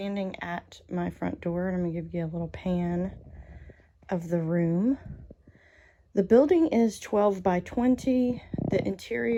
at my front door and I'm gonna give you a little pan of the room. The building is 12 by 20. The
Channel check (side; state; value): both; identical; correlation 1.00